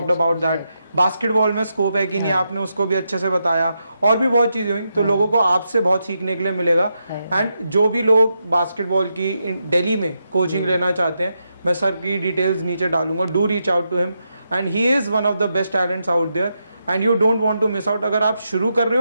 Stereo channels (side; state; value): both; inverted; correlation -0.84